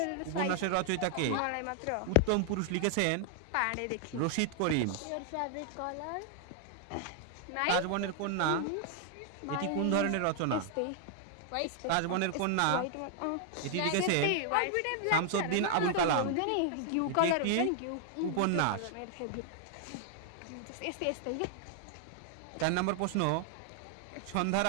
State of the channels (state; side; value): different; both; correlation 0.00